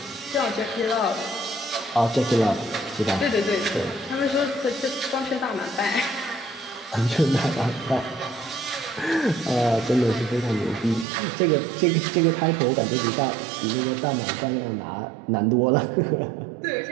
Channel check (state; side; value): drops out; left; at 11.1 s